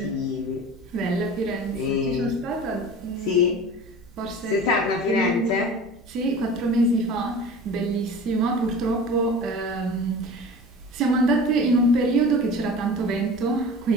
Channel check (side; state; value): right; noise; hum, 26 dB below the sound